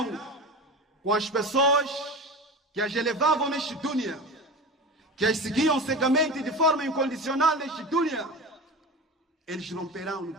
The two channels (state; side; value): normal; both; correlation 0.30